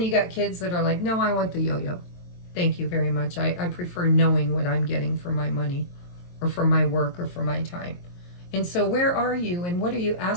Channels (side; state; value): right; late; 23 ms